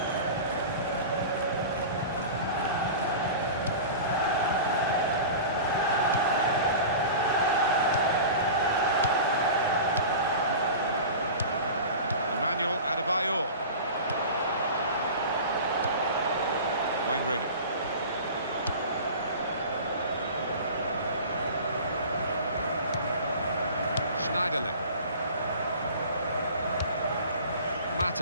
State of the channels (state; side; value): inverted; both; correlation -0.35